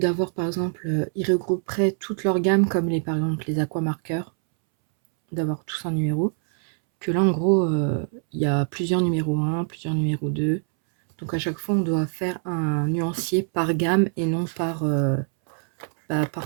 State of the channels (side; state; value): left; silent; 63 dB below the other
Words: par exemple, ils regrouperaient toute leur gamme, comme par exemple les aquamarqueurs, d'avoir tous un numéro. Que là, en gros, il y a plusieurs numéros 1, plusieurs numéros 2. Donc à chaque fois, on doit faire un nuancier par gamme et non par